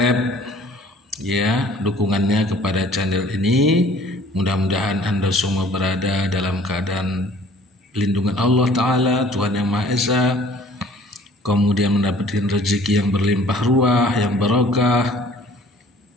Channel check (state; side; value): normal; both; correlation 0.52